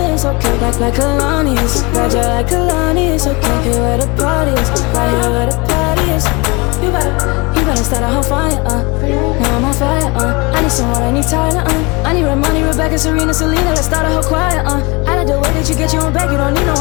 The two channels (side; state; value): right; quieter; 26.8 dB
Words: it's okay. Like Kalani's, Roger like Kalani's, okay. Here where the party is, right here where the party is. You better start a whole fire, now I'm on fire, I need someone, I need Tyler, I need Ramoni, Rebecca, Serena, Selena, let's start a whole choir, I like the way that you get your own back, you don't need no